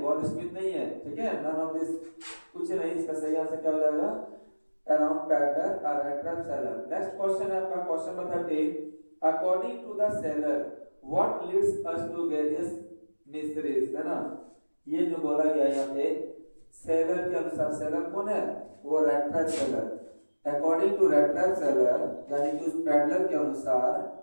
गॉड स्मिथ नहीं है। ठीक है, नन ऑफ दिस, कुछ नहीं। इसका सही आंसर क्या हो जाएगा? अराउंड पैडलर और rat trap seller. Next question है आपका question number 13। According to the seller what leads us to various mysteries, है ना। ये जो बोला गया यहाँ पे सेलर के अनुसार, सेलर कौन है? वो rat trap seller. According to rat trap seller, यानी कि उस पैडलर के अनुसार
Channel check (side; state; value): both; inverted; correlation -1.00